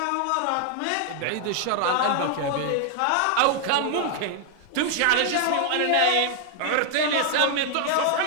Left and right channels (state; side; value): different; both; correlation 0.00